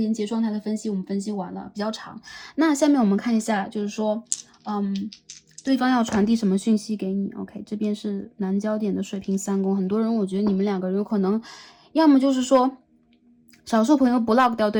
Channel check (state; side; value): identical; both; correlation 1.00